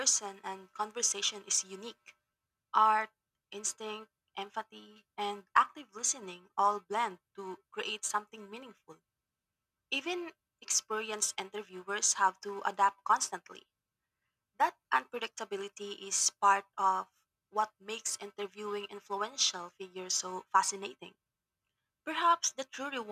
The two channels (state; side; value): identical; both; correlation 1.00